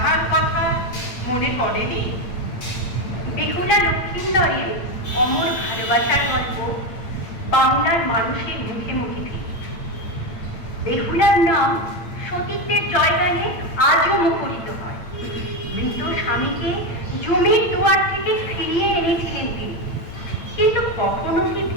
কথা মনে পড়েনি? বেহুলা লক্ষিন্দরের অমর ভালোবাসার গল্প বাংলার মানুষের মুখে মুখে ফিরে। বেহুলার নাম সতীত্বের জয়গানে আজও মুখরিত হয়। মৃত স্বামীকে জমির দুয়ার থেকে ফিরিয়ে এনেছিলেন তিনি, কিন্তু কখনো কি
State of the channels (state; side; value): late; right; 8.9 ms